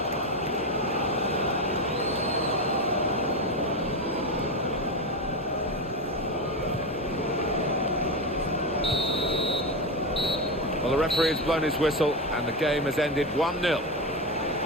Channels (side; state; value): both; normal; correlation 0.16